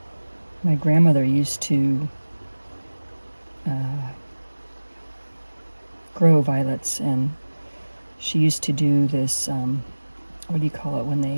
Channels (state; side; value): inverted; both; correlation -1.00